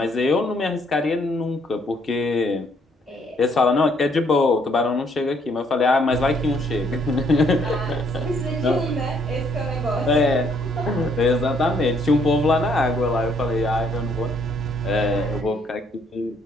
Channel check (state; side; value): normal; both; correlation 0.68